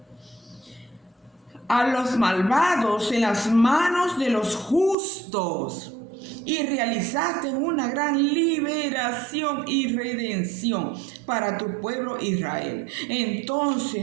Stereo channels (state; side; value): drops out; left; at 5.0 s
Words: A los malvados en las manos de los justos. Y realizaste una gran liberación y redención para tu pueblo Israel.